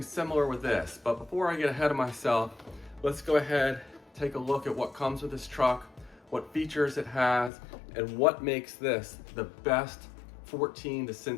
similar with this. But before I get ahead of myself, let's go ahead, take a look at what comes with this truck, what features it has, and what makes this the best 14 to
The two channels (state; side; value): drops out; right; at 7.5 s